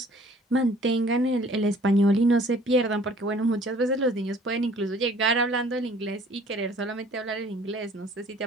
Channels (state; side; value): normal; both; correlation 0.54